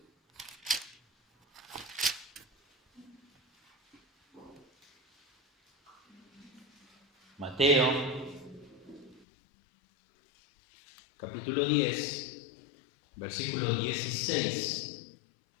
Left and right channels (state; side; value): drops out; right; at 9.2 s